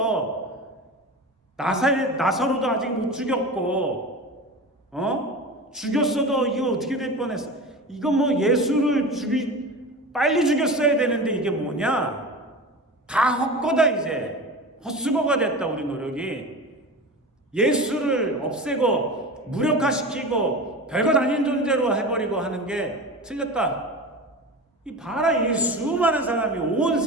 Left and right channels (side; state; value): both; normal; correlation 0.30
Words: 나사로도 아직 못 죽였고, 죽였어도 이거 어떻게 될 뻔했어. 이거 뭐 예수를 빨리 죽였어야 되는데 이게 뭐냐? 다 헛거다 이제. 헛수고가 됐다 우리 노력이. 예수를 없애고 무력화시키고 별것 아닌 존재로 해버리고 하는 게 틀렸다. 이 봐라, 이 수많은 사람이 온